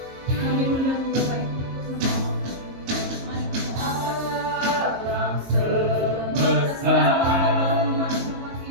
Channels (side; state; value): left; late; 22 ms